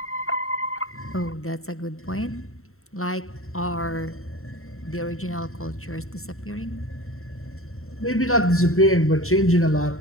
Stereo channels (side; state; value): right; late; 0.63 ms